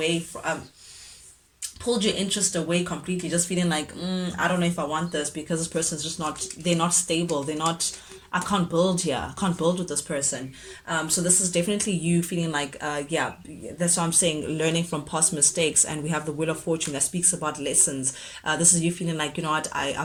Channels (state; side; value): identical; both; correlation 1.00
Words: from, pulled your interest away completely, just feeling like, I don't know if I want this, because this person's just not, they're not stable, they're not, I can't build here, I can't build with this person. So this is definitely you feeling like, yeah, that's why I'm saying learning from past mistakes. And we have the Wheel of Fortune that speaks about lessons. This is you feeling like, you know what,